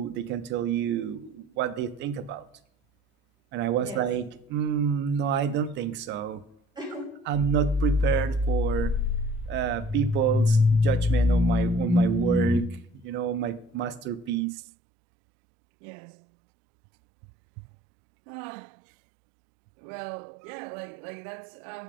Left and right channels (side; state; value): left; drops out; at 14.4 s